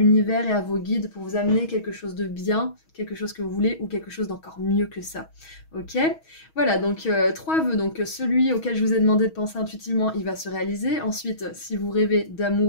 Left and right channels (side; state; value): right; late; 6.3 ms